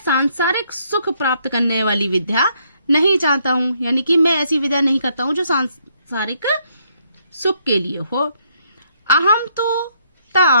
सुख प्राप्त करने वाली विद्या नहीं चाहता हूँ, यानी कि मैं ऐसी विद्या नहीं करता हूँ जो सांसारिक सुख के लिए हो। अहम तो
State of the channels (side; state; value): both; inverted; correlation -0.71